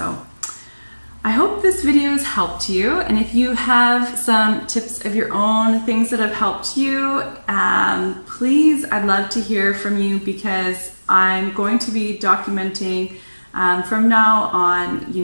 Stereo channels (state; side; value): inverted; both; correlation -1.00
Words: I hope this video has helped you, and if you have some tips of your own, things that have helped you, please, I'd love to hear from you, because I'm going to be documenting from now on,